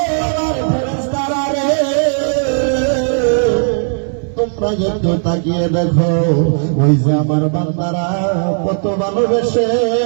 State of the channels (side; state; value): left; silent; digital silence